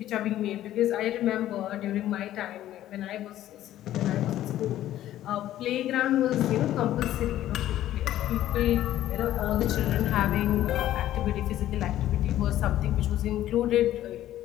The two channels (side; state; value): right; quieter; 13.1 dB